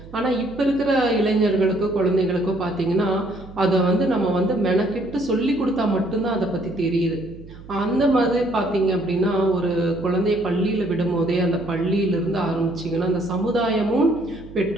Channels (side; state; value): right; noise; hum, 17 dB below the sound